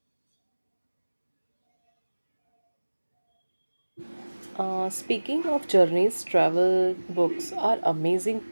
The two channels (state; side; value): inverted; both; correlation -1.00